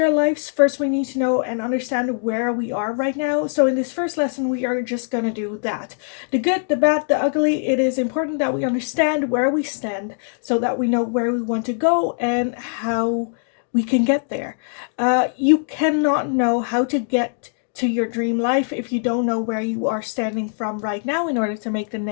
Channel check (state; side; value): silent; right; digital silence